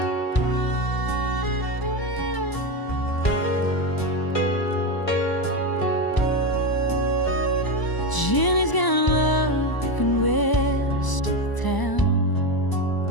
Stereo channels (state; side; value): late; right; 1.0 ms